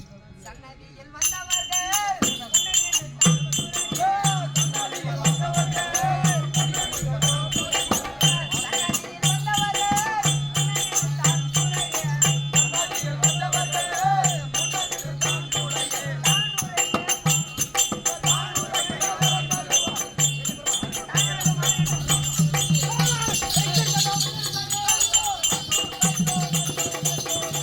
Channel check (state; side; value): identical; both; correlation 1.00